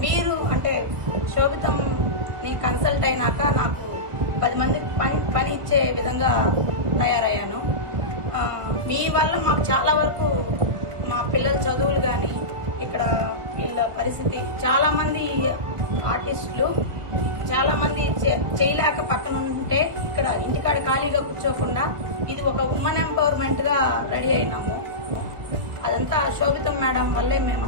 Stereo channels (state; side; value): late; left; 1.4 ms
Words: మీరు అంటే శోభితంని కన్సల్ట్ అయినాక నాకు 10 మందికి పని ఇచ్చే విధంగా తయారయ్యాను. మీ వల్ల మాకు చాలా వరకు మా పిల్లల చదువులు కానీ, ఇక్కడ వీళ్ళ పరిస్థితి, చాలామంది ఆర్టిస్టులు చాలామంది చేయలేక పక్కన ఉంటే ఇక్కడ ఇంటికాడ ఖాళీగా కూర్చోకుండా ఇది ఒక ఉమెన్ ఎంపవర్మెంట్గా రెడీ అయినాము. అదంతా శోభితం మేడం వల్లే మేము